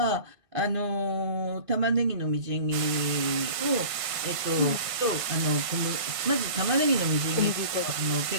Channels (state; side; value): late; left; 1.5 ms